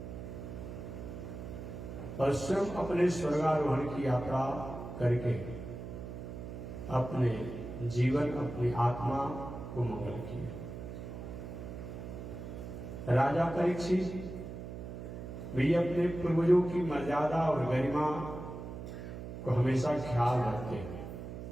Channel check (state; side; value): noise; right; hum, 9 dB below the sound